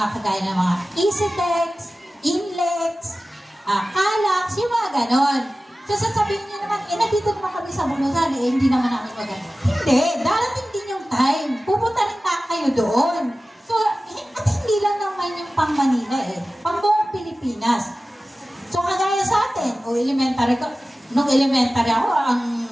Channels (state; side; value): normal; both; correlation 0.96